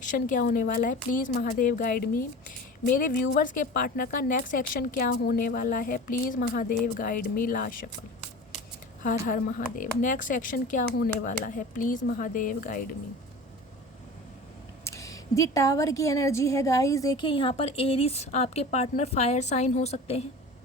क्या होने वाला है। प्लीज़ महादेव गाइड मी। मेरे व्यूवर्स के पार्टनर का नेक्स्ट एक्शन क्या होने वाला है, please Mahadev guide me. Last shuffle. Har Har Mahadev. Next action क्या होने वाला है, please Mahadev guide me. The tower की एनर्जी है गाइस। देखिए यहाँ पर एरिस आपके पार्टनर फायर साइन हो सकते हैं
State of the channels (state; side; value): normal; both; correlation 0.36